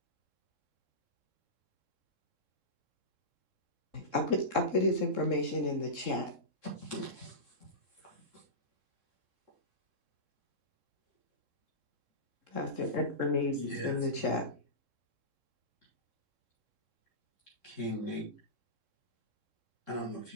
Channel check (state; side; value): late; left; 3.7 ms